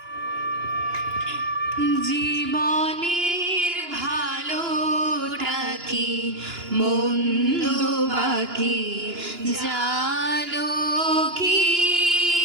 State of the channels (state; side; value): late; left; 2.9 ms